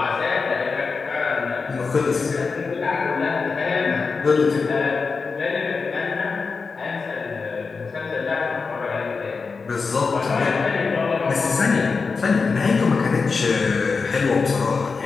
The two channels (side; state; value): right; quieter; 4.7 dB